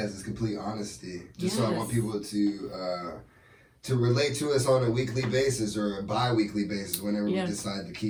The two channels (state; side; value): identical; both; correlation 1.00